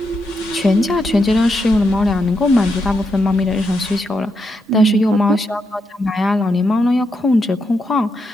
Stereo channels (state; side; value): normal; both; correlation 0.82